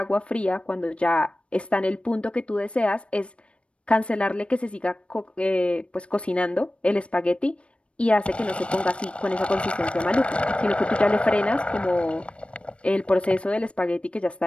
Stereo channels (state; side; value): late; right; 0.060 ms